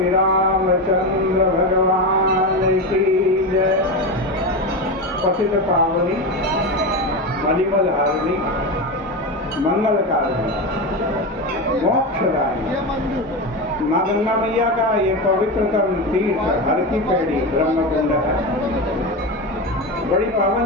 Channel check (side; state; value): both; normal; correlation 0.19